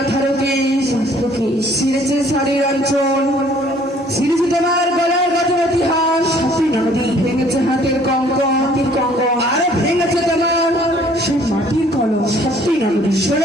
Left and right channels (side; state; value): both; normal; correlation 0.58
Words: কেশ, সিরেছে শাড়ির অঞ্চল, সিরেছে তোমার গলার গজবতী হাস, নদী ভেঙেছে হাতের কঙ্কন, আর ভেঙেছে তোমার সে মাটির কলম। সত্যি নদী।